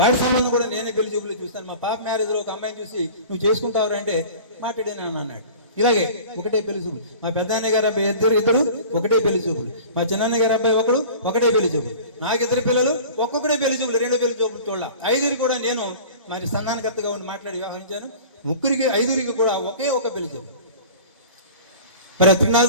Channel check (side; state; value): both; inverted; correlation -0.41